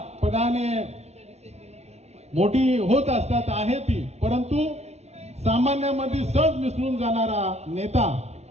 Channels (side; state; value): left; late; 0.31 ms